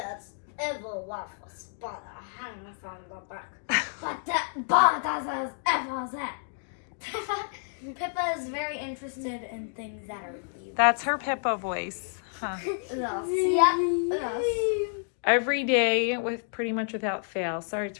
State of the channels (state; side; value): silent; right; digital silence